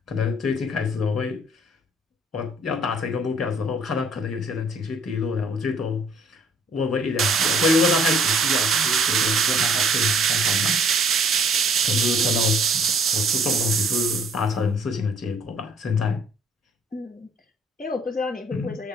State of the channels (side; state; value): both; normal; correlation 0.59